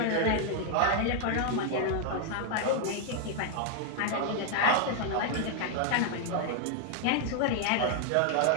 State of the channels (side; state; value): both; different; correlation 0.00